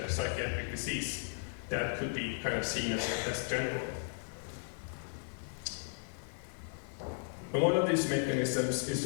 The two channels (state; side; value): silent; right; digital silence